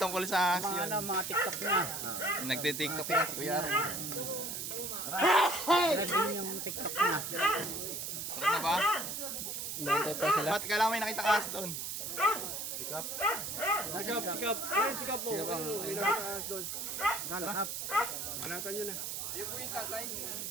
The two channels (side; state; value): right; noise; hiss, 4 dB below the sound